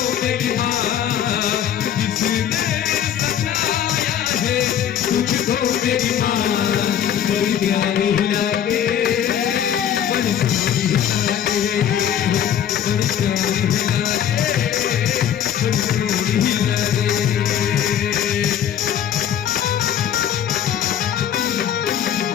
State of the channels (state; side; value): quieter; right; 9.5 dB